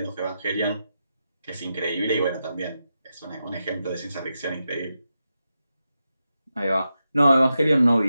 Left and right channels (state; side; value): inverted; both; correlation -0.88